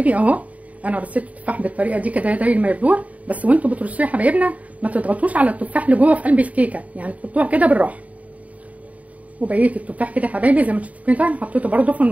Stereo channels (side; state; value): left; late; 0.069 ms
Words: اهو، انا رصيت التفاح بالطريقه دي كده داير ما يدور. بس وانتوا بترصوه يا حبايبنا ما تضغطوش على التفاح اللي جوه في قلب الكيكه، يعني تحطوها كده بالراحه. وبقيه التفاح كده يا حبايبي زي ما انتم شايفين كده حطيته برده في